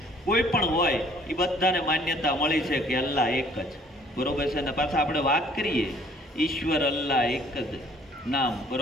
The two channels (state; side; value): normal; both; correlation 0.57